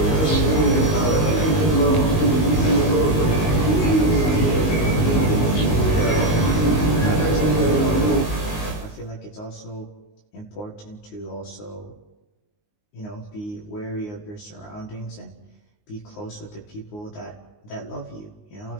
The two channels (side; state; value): right; late; 19 ms